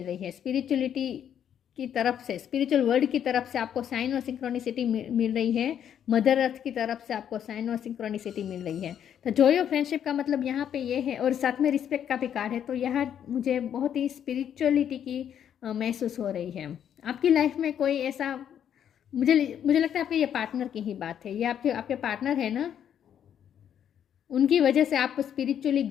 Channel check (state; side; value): quieter; right; 9.3 dB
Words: रही है। स्पिरिचुअलिटी की तरफ से, स्पिरिचुअल वर्ल्ड की तरफ से आपको साइन और सिंक्रोनिसिटी मिल रही है। मदर अर्थ की तरफ से आपको साइन और सिंक्रोनिसिटी मिल रही है। तो जॉय ऑफ फ्रेंडशिप का मतलब यहाँ पे ये है, और साथ में रिस्पेक्ट का भी कार्ड है। तो यहाँ मुझे बहुत ही स्पिरिचुअलिटी की महसूस हो रही है। आपकी लाइफ में कोई ऐसा, मुझे मुझे लगता है आपके ये पार्टनर की ही बात है। ये आपके आपके पार्टनर है ना, उनकी वजह से आप स्पिरिचुअली